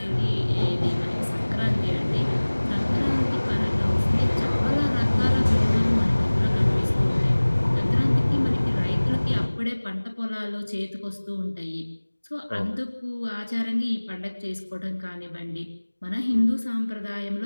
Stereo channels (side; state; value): both; inverted; correlation -1.00